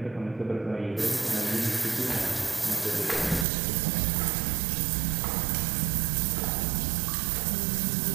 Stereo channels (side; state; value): left; drops out; at 3.5 s